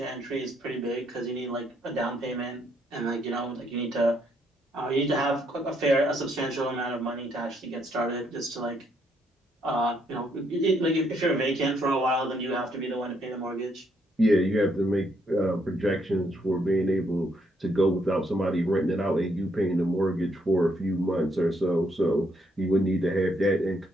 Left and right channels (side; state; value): both; normal; correlation 0.73